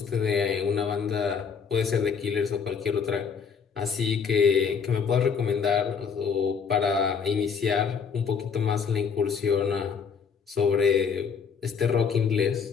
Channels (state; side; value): quieter; right; 6.2 dB